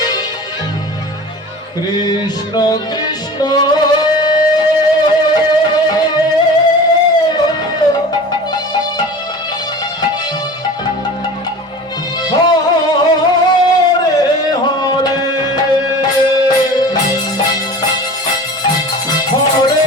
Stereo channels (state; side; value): normal; both; correlation 0.37